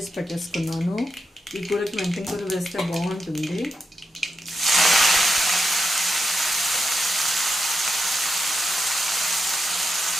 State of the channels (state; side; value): normal; both; correlation 0.86